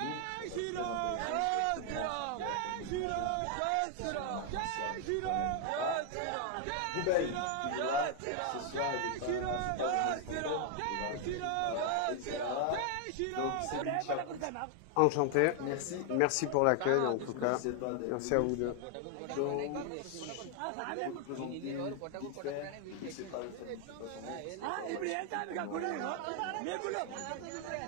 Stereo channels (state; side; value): different; both; correlation 0.00